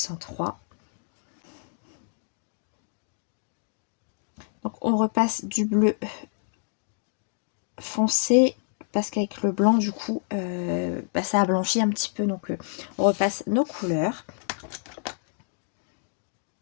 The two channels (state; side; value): silent; right; digital silence